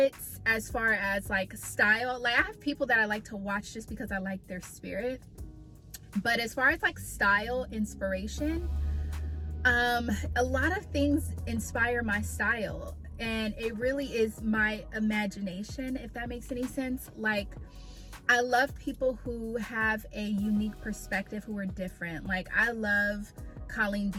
as far as like style. Like, I have people that I like to watch just because I like their spirit, but as far as like style inspiration, a lot of things inspire my style, and it really is my imagination, if that makes any sense. Like, I love people who have a unique perspective, who are different. Like, I love Colleen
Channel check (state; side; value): identical; both; correlation 1.00